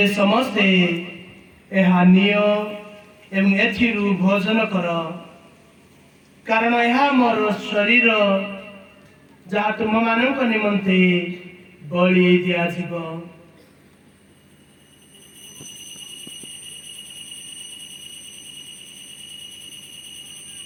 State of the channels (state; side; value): identical; both; correlation 1.00